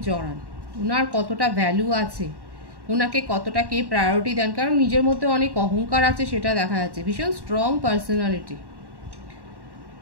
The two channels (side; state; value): left; late; 1.1 ms